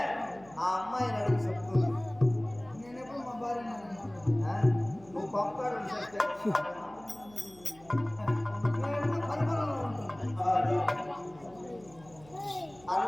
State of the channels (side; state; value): right; noise; hum, 24 dB below the sound